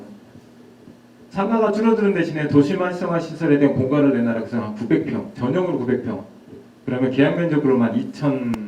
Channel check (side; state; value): both; identical; correlation 1.00